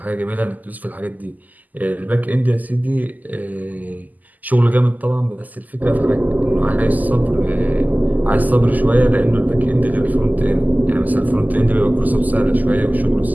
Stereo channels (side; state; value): left; late; 0.082 ms